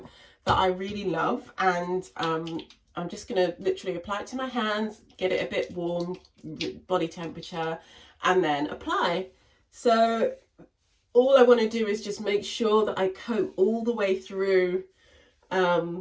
that I really love, and I'm just going to literally apply it to my hands, get it a bit warm, body temperature, and then apply. So all I want to do is just make sure that I coat all the way through,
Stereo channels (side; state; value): both; identical; correlation 1.00